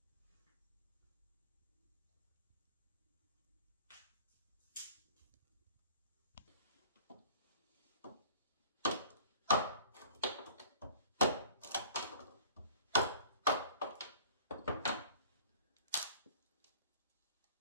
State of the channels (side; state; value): both; inverted; correlation -0.46